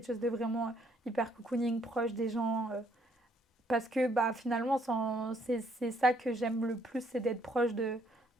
chose de vraiment hyper cocooning, proche des gens. Parce que bah, finalement, c'est ça que j'aime le plus, c'est d'être proche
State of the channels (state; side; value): normal; both; correlation 0.68